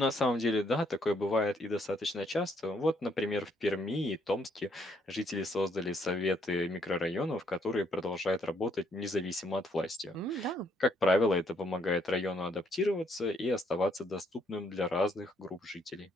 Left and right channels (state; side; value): normal; both; correlation 0.70